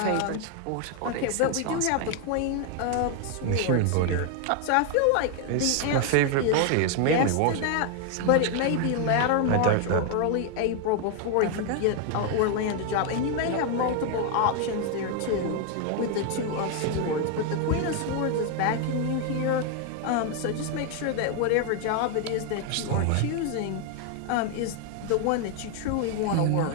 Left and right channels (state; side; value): different; both; correlation 0.00